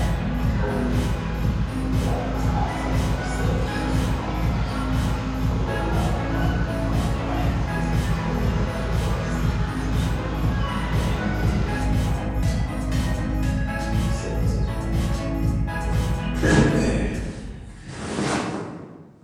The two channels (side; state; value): both; identical; correlation 1.00